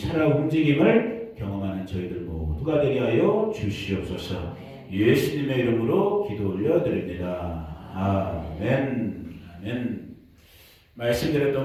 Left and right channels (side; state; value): both; identical; correlation 1.00